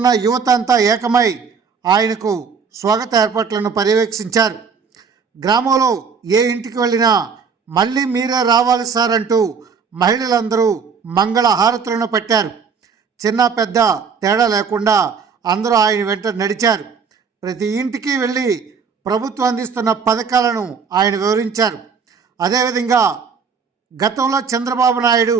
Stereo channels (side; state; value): left; quieter; 5.9 dB